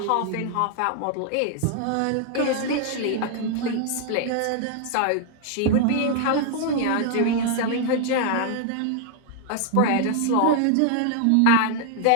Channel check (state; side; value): different; both; correlation 0.00